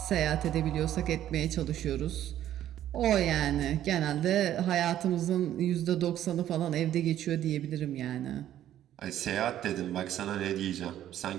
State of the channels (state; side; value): quieter; left; 11.9 dB